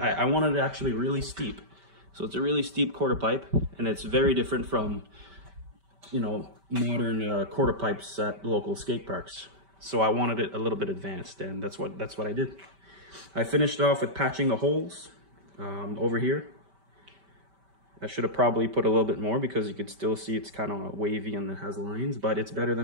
wanted it actually really steep. So it's a really steep quarter pipe, and it's very different from, modern quarter pipes at local skate parks. So I wanted it a little bit advanced, and that's what I did. I finished off with patching the holes over here. I should have probably put a little bit more because you could still see it's kind of wavy and it has lines, but it's better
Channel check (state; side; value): late; left; 5.1 ms